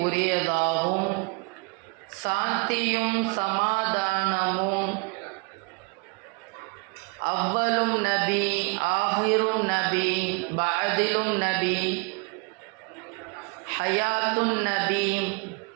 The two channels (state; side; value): quieter; left; 31.5 dB